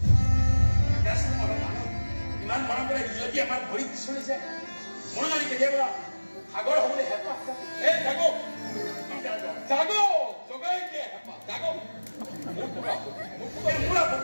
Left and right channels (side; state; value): both; inverted; correlation -1.00